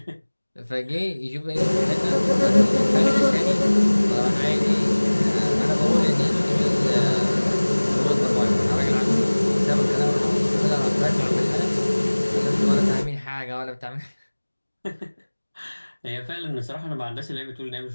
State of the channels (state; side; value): inverted; both; correlation -1.00